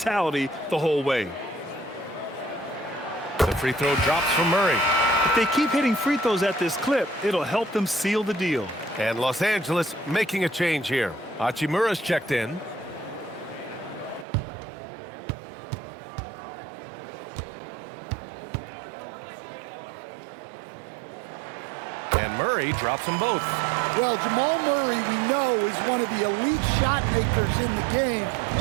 the whole way. The free throw drops from Murray. If they keep hitting free throws at this clip, it'll help them seal the deal. And Los Angeles making a change here. Hachimura's checked in. And Murray drops them both. Well, Jamal Murray, we know, is one of the elite shot makers in the game,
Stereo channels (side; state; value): left; drops out; at 14.2 s